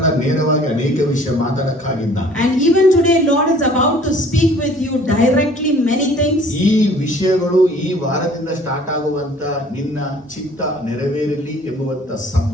ನೇರವಾಗಿ ಅನೇಕ ವಿಷಯ ಮಾತಾಡಕ್ಕಾಗಿದ್ದಾನೆ. And even today Lord is about to speak with you directly many things. ಈ ವಿಷಯಗಳು ಈ ವಾರದಿಂದ ಸ್ಟಾರ್ಟ್ ಆಗುವಂತ ನಿನ್ನ ಚಿತ್ತ ನೆರವೇರಲಿ ಎಂಬುವಂತ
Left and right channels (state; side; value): normal; both; correlation 0.53